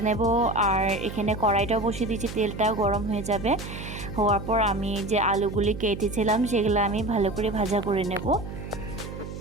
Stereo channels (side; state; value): right; noise; hum, 9 dB below the sound